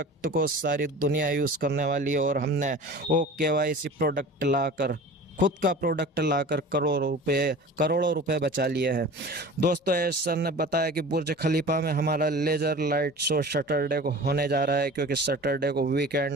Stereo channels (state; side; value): normal; both; correlation 0.39